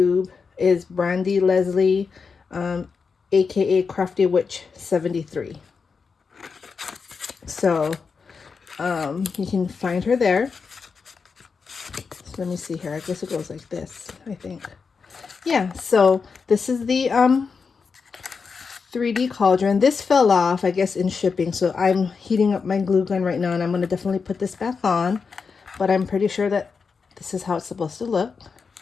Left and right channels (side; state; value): right; quieter; 5.3 dB